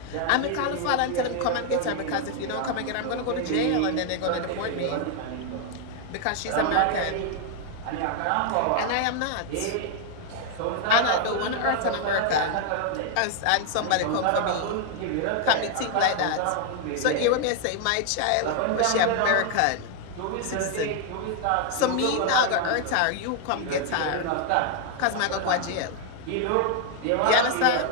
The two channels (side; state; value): both; different; correlation 0.00